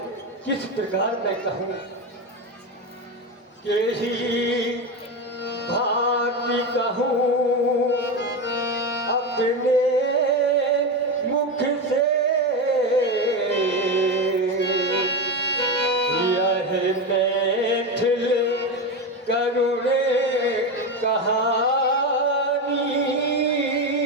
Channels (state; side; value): normal; both; correlation 0.16